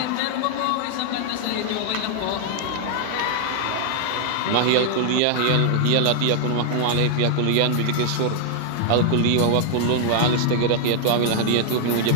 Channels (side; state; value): both; different; correlation 0.00